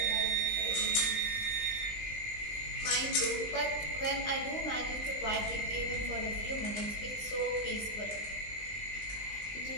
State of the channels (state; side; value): late; right; 20 ms